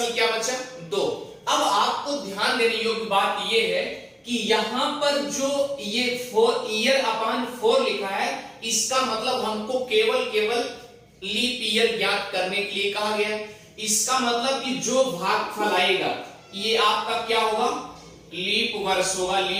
क्या बचा? 2। अब आपको ध्यान देने योग्य बात यह है कि यहां पर जो ये 4 ईयर अपॉन 4 लिखा है, इसका मतलब हमको केवल लीप ईयर ज्ञात करने के लिए कहा गया है। इसका मतलब कि जो भागफल आएगा ये आपका क्या होगा? लीप वर्ष होगा,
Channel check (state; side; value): identical; both; correlation 1.00